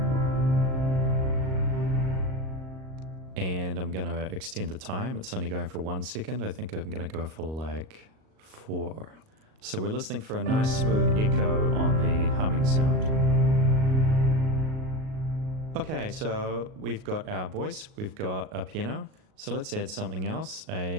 And I'm going to extend the time. It's only going for 1 second. I think I'm going to go for like 4. So we're listening for a nice smooth echo on the humming sound. Okay, so we've got our voice, we've got a piano. So let's add something else,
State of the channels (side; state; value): left; late; 38 ms